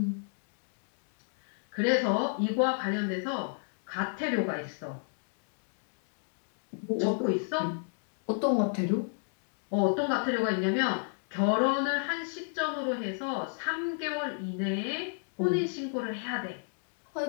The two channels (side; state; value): right; silent; 56 dB below the other